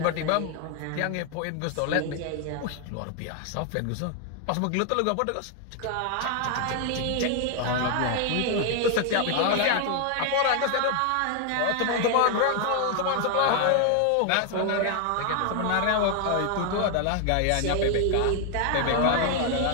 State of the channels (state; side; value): different; both; correlation 0.00